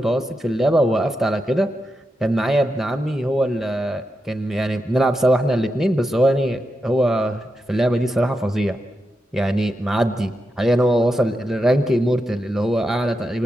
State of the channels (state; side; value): normal; both; correlation 0.87